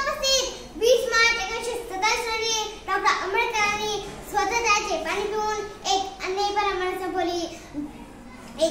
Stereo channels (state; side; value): identical; both; correlation 1.00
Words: 20 मार्च 1927 रोजी डॉक्टर आंबेडकरांनी स्वतःचे पाणी पिऊन एक अन्यायी परंपरा संपवली.